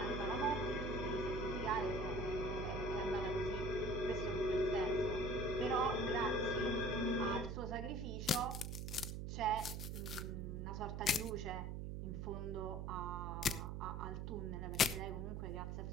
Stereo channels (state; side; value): noise; right; hum, 4 dB below the sound